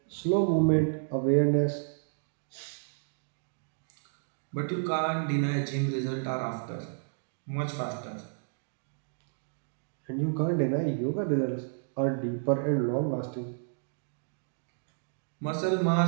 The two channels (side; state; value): left; silent; digital silence